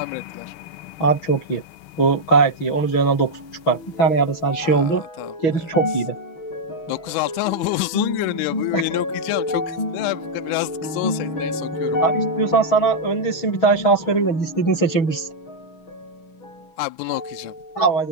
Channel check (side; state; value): right; late; 6.3 ms